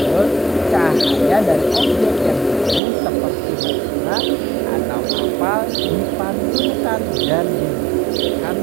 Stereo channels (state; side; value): drops out; left; at 2.8 s